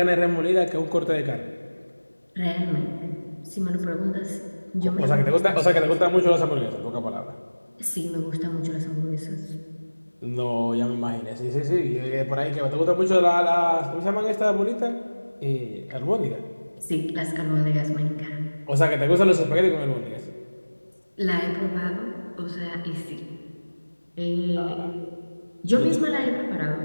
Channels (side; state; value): both; inverted; correlation -1.00